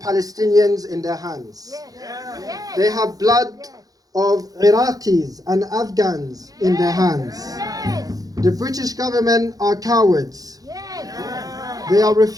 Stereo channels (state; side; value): late; left; 0.18 ms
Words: in their hands. They have blood of Iraqis and Afghans in their hands. The British government are cowards. They are